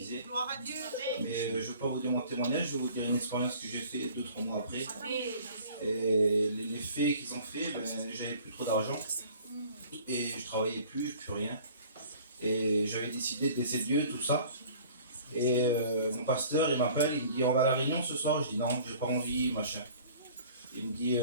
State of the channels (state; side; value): inverted; both; correlation -0.49